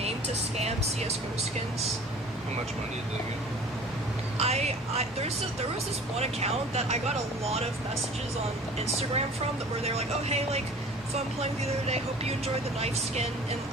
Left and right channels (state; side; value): normal; both; correlation 0.45